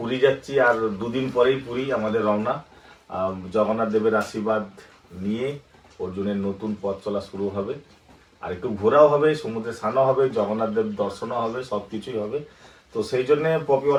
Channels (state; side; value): identical; both; correlation 1.00